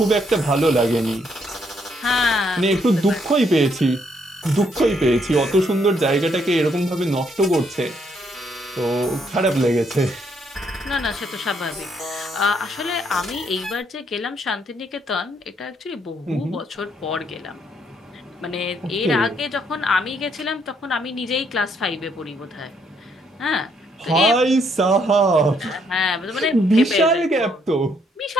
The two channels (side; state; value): both; normal; correlation 0.72